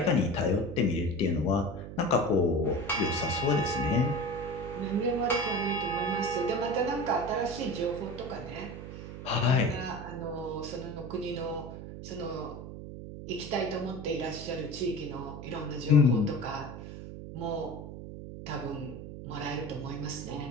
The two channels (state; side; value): noise; right; hum, 10 dB below the sound